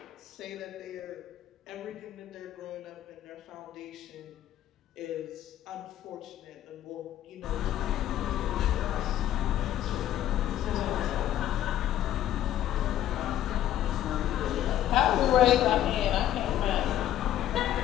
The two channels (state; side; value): quieter; right; 12.1 dB